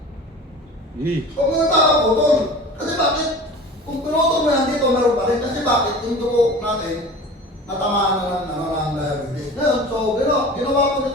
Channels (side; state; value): both; normal; correlation 0.38